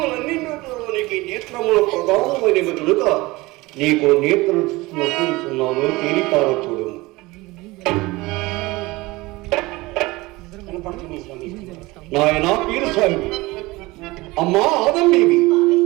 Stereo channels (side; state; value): left; quieter; 21.4 dB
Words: నేత్రములు ప్రధానమైనవి కనుక నీకు నేత్రం నొప్పిస్తున్నాను, తేలిపార చూడము. నాయన పీరస్వామి, అమ్మా ఆదమ్మేవి,